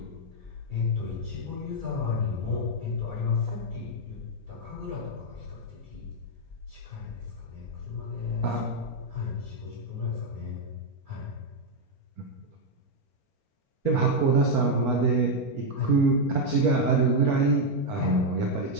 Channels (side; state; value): right; late; 4.4 ms